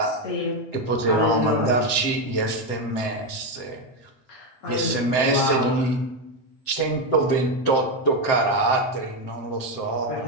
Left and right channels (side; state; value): right; late; 7.7 ms